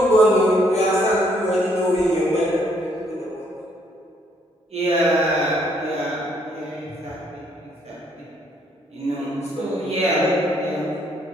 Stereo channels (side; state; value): both; normal; correlation 0.69